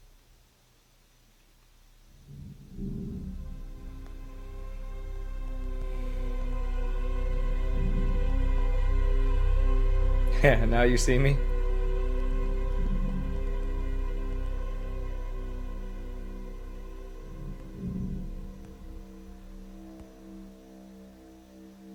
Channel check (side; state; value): both; identical; correlation 1.00